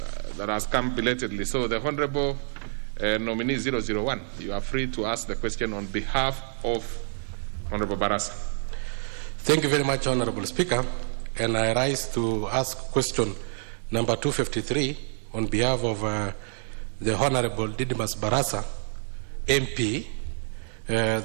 that has come belatedly. So the Honorable nominee 001, you are free to ask the question on behalf of Honorable Barasa. Thank you very much, Honorable Speaker. And I rise to ask question number 253 on behalf of the Honorable Didymus Barasa, MP,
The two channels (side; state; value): left; silent; digital silence